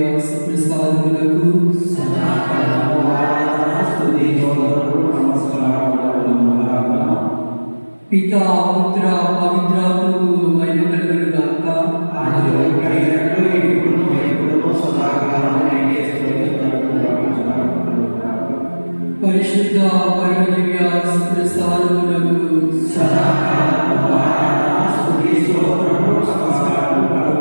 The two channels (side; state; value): both; inverted; correlation -1.00